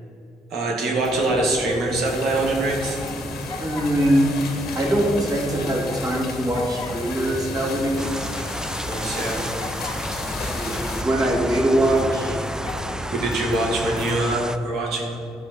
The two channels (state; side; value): normal; both; correlation 0.73